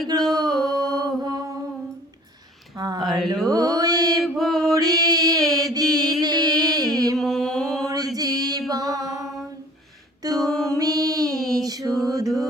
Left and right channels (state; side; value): normal; both; correlation 0.49